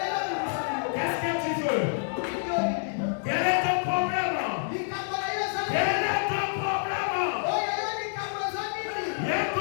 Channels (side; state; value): right; silent; 59 dB below the other